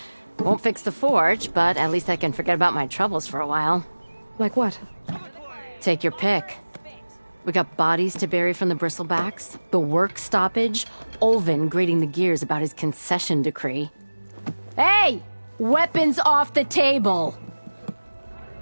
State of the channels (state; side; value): inverted; both; correlation -1.00